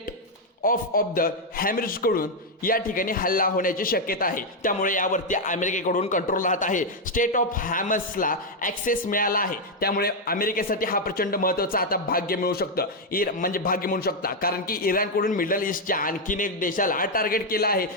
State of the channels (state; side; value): normal; both; correlation 0.01